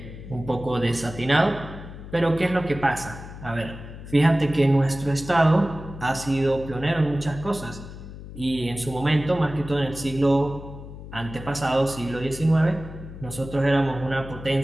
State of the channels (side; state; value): left; noise; hum, 13 dB below the sound